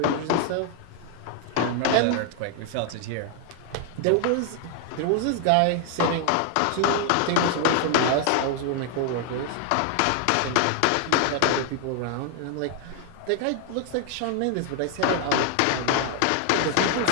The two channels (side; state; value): both; different; correlation 0.00